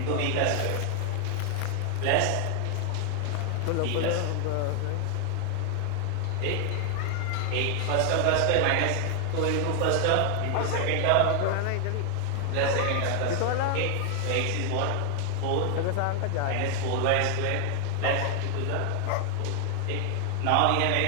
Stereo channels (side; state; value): both; different; correlation 0.00